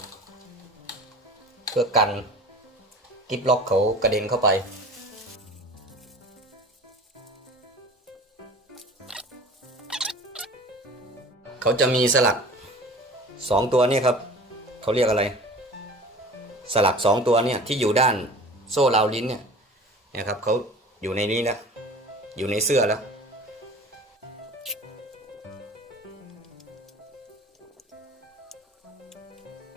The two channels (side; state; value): both; normal; correlation 0.41